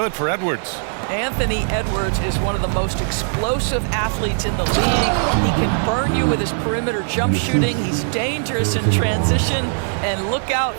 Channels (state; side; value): silent; left; 66 dB below the other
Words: for Edwards. Anthony Edwards is one of the most explosive athletes in the league. He can burn you with his perimeter jump shooting. He's dangerous in transition. And look out,